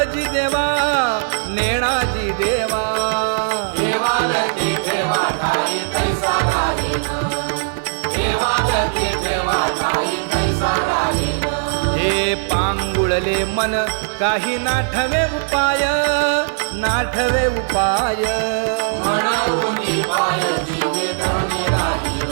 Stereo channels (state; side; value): silent; left; digital silence